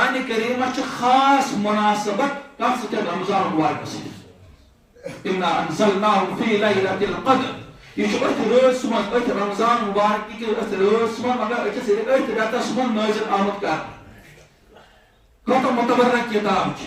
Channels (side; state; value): both; identical; correlation 1.00